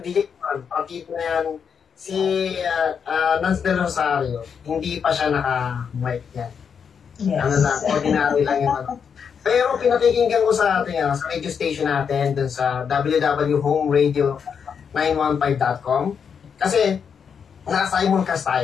DJ Juan, partida na yan, si Nance Del Rosario, hindi pa siya naka-mic yan. Yes. Ano lang, ordinary lang yun. Pero pinakikinggan ko sa atin, sa radio station natin, dun sa www.homeradio915.com, kasi naka-simulcast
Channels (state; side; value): quieter; right; 6.8 dB